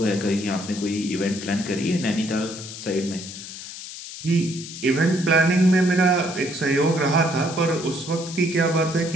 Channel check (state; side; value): noise; left; hiss, 11 dB below the sound